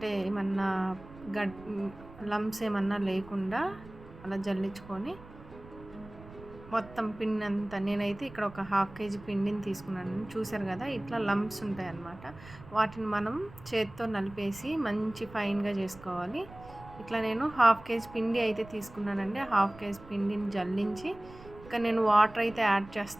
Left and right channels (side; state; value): right; noise; rumble, 18 dB below the sound